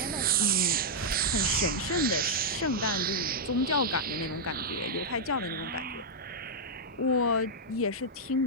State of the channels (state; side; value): normal; both; correlation -0.06